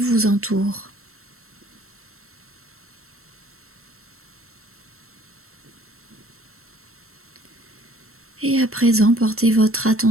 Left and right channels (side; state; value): left; late; 0.63 ms